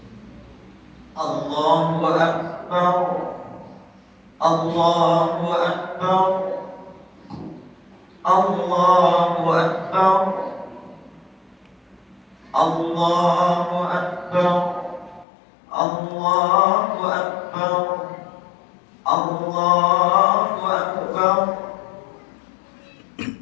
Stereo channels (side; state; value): right; drops out; at 15.2 s